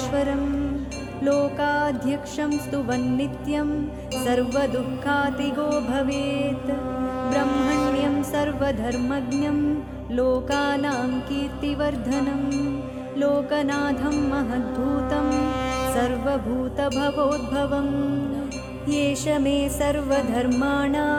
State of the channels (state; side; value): identical; both; correlation 1.00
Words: लोकाध्यक्षं स्तुवन् नित्यं सर्वदुःखातिगो भवेत्। ब्रह्मण्यं सर्वधर्मज्ञं लोकानां कीर्तिवर्धनं लोकनाथं महद्भूतं सर्वभूतभवोद्भवम्। येष मे